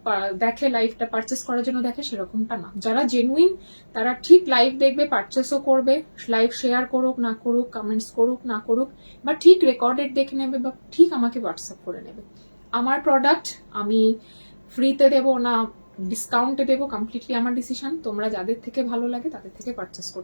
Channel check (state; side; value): inverted; both; correlation -1.00